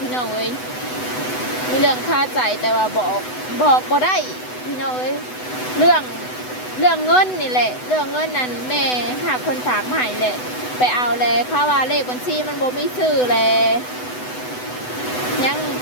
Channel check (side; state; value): right; late; 8.0 ms